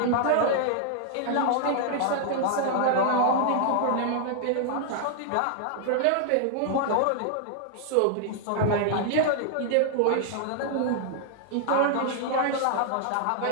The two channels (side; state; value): both; different; correlation 0.00